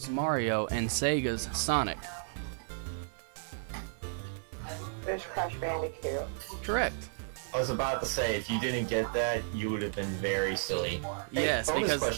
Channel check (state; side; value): silent; left; 56 dB below the other